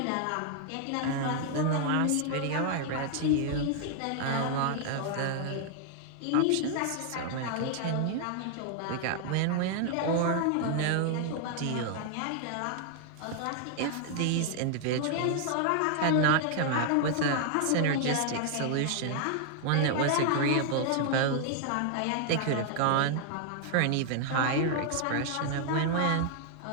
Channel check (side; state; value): both; different; correlation 0.00